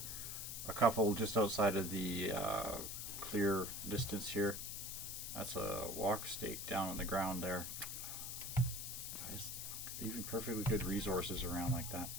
a couple just outside of the clear distance here. That's a walk stake down on the ground there. Guys, leaving perfectly good resources around like that.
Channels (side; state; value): left; noise; hiss, 5 dB below the sound